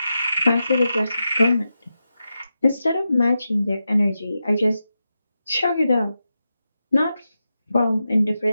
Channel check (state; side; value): inverted; both; correlation -0.89